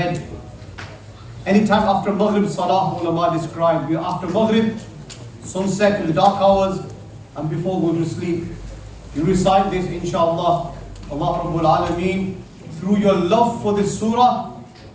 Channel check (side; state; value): both; identical; correlation 1.00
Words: Anytime after Maghrib, Salah, ulama described, after Maghrib, sunset in the dark hours, and before going to sleep, you recite this, inshallah. Allah Rabbul Alameen, through your love for this surah